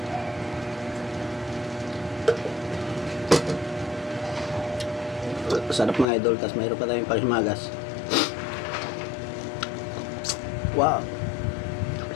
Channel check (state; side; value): drops out; right; at 6.1 s